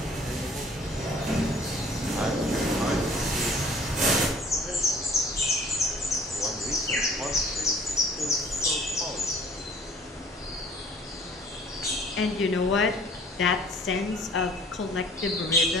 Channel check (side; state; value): both; normal; correlation 0.53